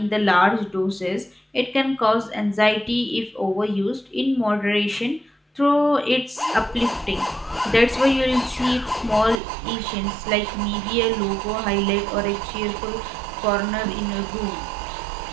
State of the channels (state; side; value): drops out; left; at 9.4 s